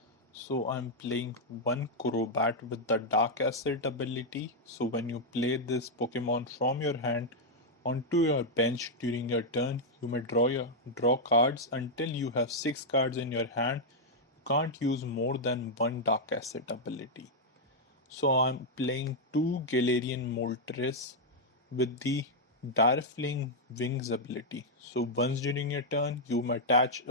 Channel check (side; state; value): both; normal; correlation -0.03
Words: So I'm playing one Crobat with the Dark Acid ability. So when you play this Pokemon from your hand onto your bench during your turn, you may draw cards until you have 6 cards in your hand. You can't use more than one Dark Acid ability. So I'm playing two Galarian Moltres with the Darfling Wings ability. So once during your turn, you may attach